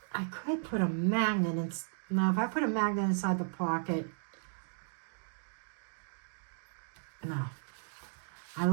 I could put a magnet in. No, if I put a magnet inside the pocket, no. I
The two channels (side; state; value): left; silent; digital silence